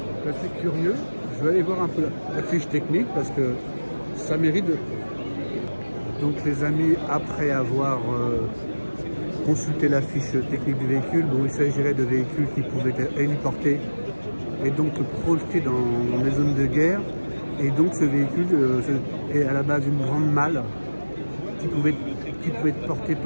C'est assez curieux. Je vais aller voir un peu la fiche technique parce que ça mérite de... Donc les amis, après avoir consulté la fiche technique du véhicule, bon, il s'agirait de véhicules qui pouvaient être héliportés et donc projetés dans les zones de guerre. Et donc ce véhicule est à la base une grande malle qui pouvait être portée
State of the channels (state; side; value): inverted; both; correlation -1.00